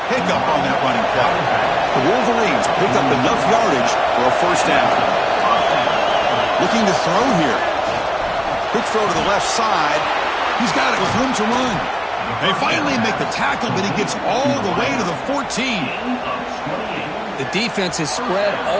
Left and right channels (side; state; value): both; identical; correlation 1.00